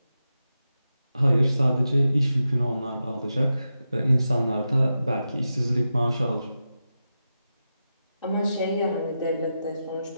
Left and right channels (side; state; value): both; inverted; correlation -0.90